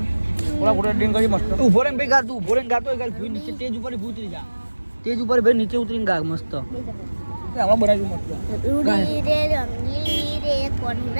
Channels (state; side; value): inverted; both; correlation -1.00